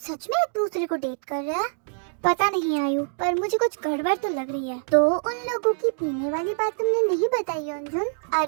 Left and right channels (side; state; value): left; silent; digital silence